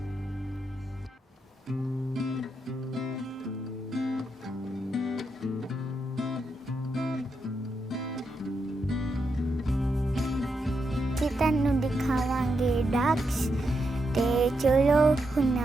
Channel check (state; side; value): normal; both; correlation 0.83